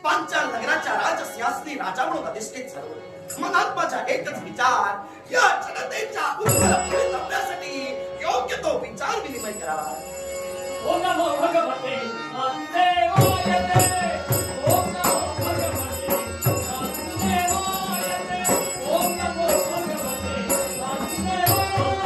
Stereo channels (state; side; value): identical; both; correlation 1.00